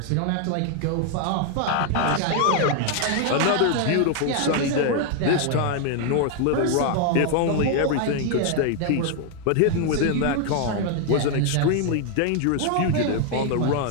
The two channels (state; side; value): different; both; correlation 0.00